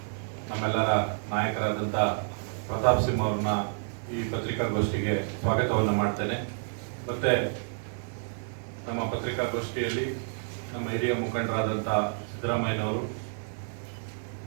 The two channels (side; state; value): left; silent; 58 dB below the other